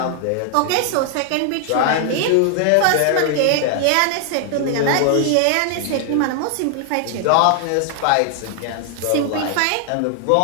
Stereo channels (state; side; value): different; both; correlation 0.00